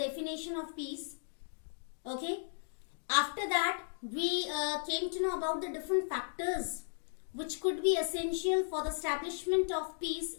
of peace. Okay, after that, we came to know about the different factors which could be essential for the establishment of peace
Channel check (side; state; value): right; silent; digital silence